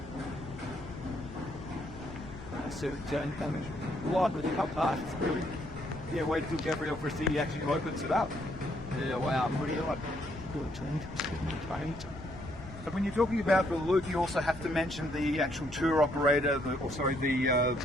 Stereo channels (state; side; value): noise; left; rumble, 14 dB below the sound